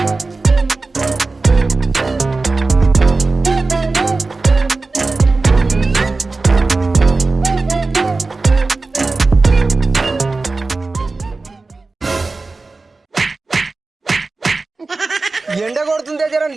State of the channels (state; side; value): quieter; left; 3.7 dB